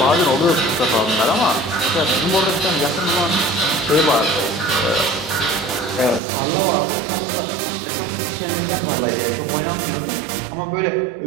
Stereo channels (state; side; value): drops out; left; at 6.2 s